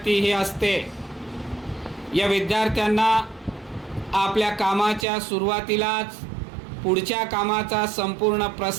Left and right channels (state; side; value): drops out; left; at 5.1 s